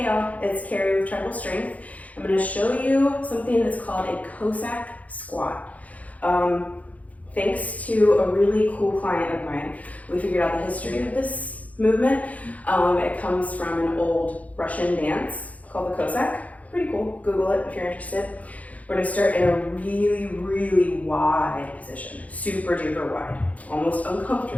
y'all, it's Carrie with Tribal Strength. I'm going to show you something that's called a Cossack Squat. Thanks to a really cool client of mine, we figured out the history of this movement. It comes from an old Russian dance called the Cossack. Pretty cool, Google it if you're interested. We're going to start in a really wide position, super duper wide, almost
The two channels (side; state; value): right; late; 0.070 ms